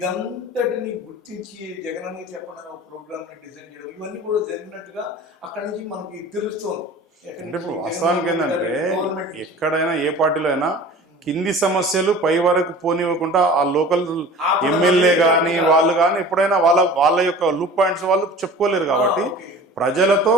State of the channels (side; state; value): both; normal; correlation 0.41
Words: గుర్తించి జగనన్న చెప్పడానికి ఒక ప్రోగ్రామ్ని డిజైన్ చేయడం, ఇవన్నీ కూడా జరిగినట్టుగా అక్కడి నుంచి మనకి తెలుస్తోంది. అంటే ఇప్పుడు వాస్తవానికి ఏంటంటే ఎక్కడైనా ఏ పార్టీలో అయినా కింది సమస్యలు పై వరకు పోనివ్వకుండా ఆ లోకల్ ఎమ్మెల్యే కానీ వాళ్ళు కానీ ఎప్పుడైనా వాళ్ళ యొక్క లూప్ పాయింట్స్ వాళ్ళు చెప్పుకోలేరు. కాబట్టి ప్రజలతో